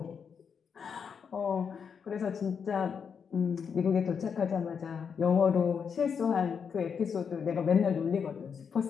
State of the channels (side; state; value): right; quieter; 6.6 dB